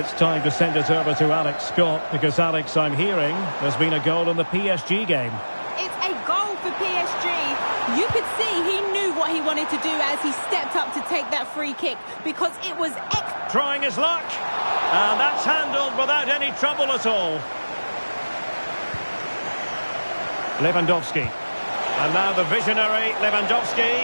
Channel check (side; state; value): both; inverted; correlation -1.00